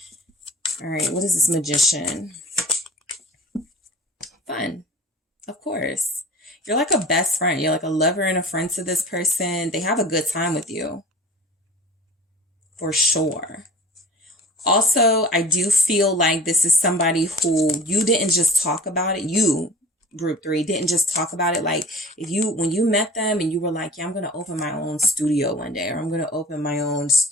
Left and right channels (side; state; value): both; normal; correlation 0.42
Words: All right, what is this Magician? Fun, of course. You're like a best friend. You're like a lover and a friend to this person. They have a good time with you, for sure. Also, I do feel like this is somebody who you didn't just talk about it. You group 3 didn't just talk about it. Like when you met them and you were like, yeah, I'm going to open my own studio one day, or I'm going to open my own